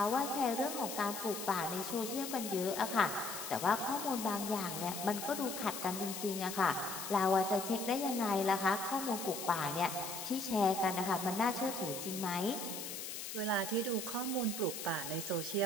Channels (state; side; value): noise; left; hiss, 7 dB below the sound